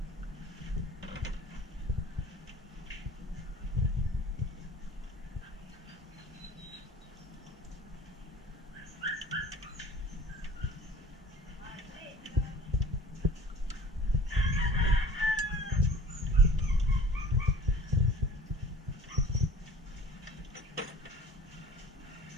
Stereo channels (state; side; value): normal; both; correlation 0.45